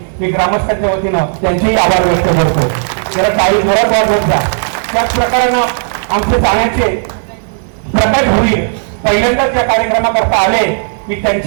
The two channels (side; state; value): left; silent; 68 dB below the other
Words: मी ग्रामस्थांच्या वतीनं त्यांचेही आभार व्यक्त करतो. त्याला काही जोरात वाजवत जा. त्याच प्रकारानं आमचे जाण्याचे प्रकाश होईल पहिल्यांदाच या कार्यक्रमाकरता आले मी